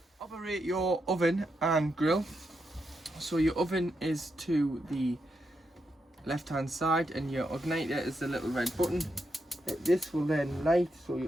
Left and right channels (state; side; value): normal; both; correlation 0.83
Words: Operate your oven and grill. So your oven is to the left hand side and your igniter is the little red button. This will then light, so